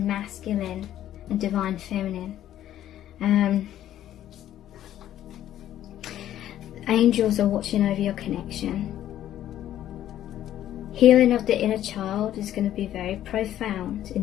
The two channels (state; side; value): quieter; right; 12.0 dB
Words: masculine and divine feminine. Angels are watching over your connection. Healing of the inner child is going to be very profound in